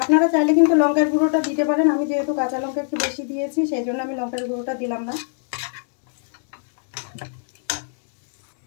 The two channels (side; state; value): right; silent; 64 dB below the other